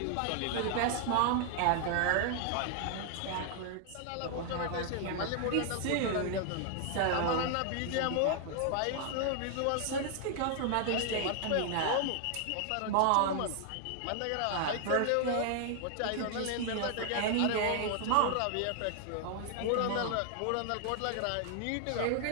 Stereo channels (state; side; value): different; both; correlation 0.00